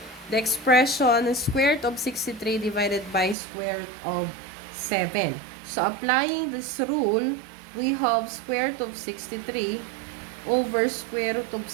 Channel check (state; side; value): drops out; left; at 3.4 s